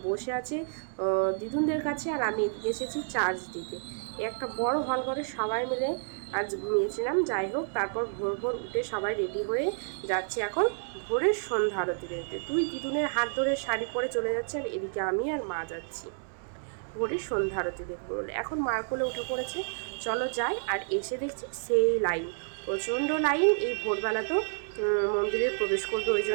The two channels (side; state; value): left; silent; digital silence